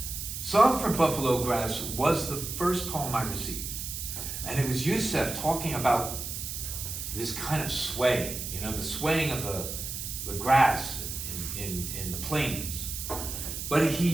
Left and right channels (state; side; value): noise; right; hiss, 6 dB below the sound